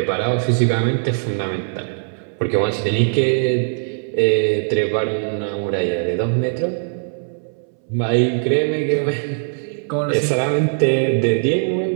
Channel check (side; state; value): left; silent; 66 dB below the other